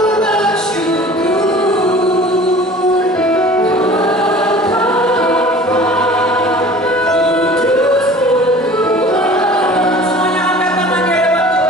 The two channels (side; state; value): both; normal; correlation 0.44